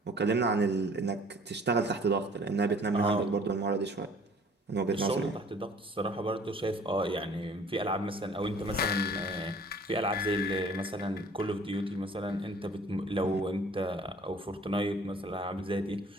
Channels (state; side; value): normal; both; correlation 0.52